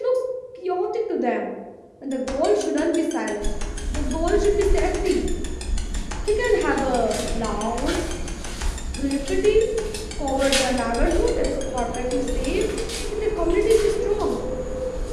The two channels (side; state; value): both; identical; correlation 1.00